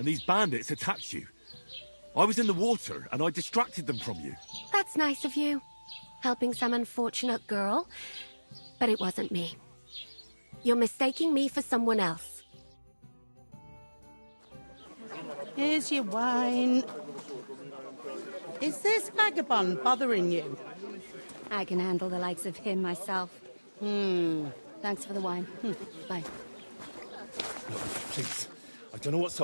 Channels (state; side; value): inverted; both; correlation -1.00